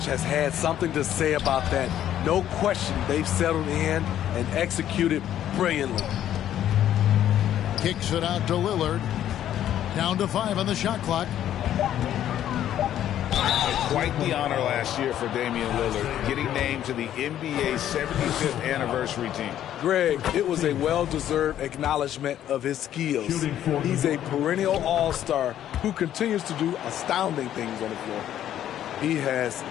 has had something to say about that. No question, they've settled in and executed brilliantly. Kicks it out to Lillard. Down to 5 on the shot clock. Quite the honor last year for Damian Lillard, getting named to the NBA 75th anniversary team. Greg, it was a well-deserved acknowledgement of his skills. He's a perennial all-star who continues to do astounding things on the floor. He has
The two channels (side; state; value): right; quieter; 11.3 dB